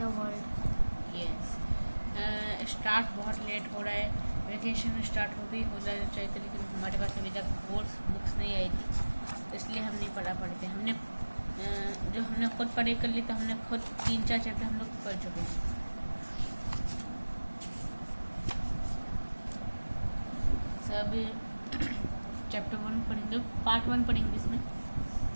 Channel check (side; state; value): both; inverted; correlation -1.00